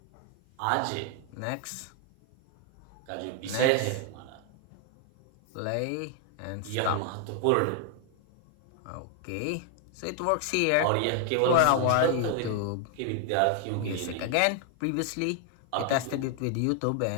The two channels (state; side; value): different; both; correlation 0.00